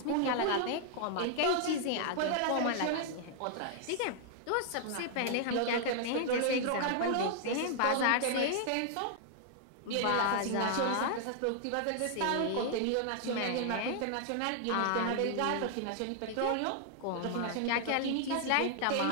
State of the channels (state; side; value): different; both; correlation -0.01